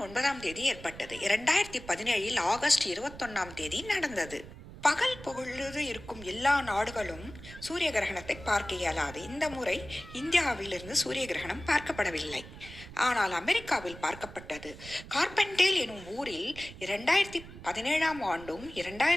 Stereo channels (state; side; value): noise; right; rumble, 15 dB below the sound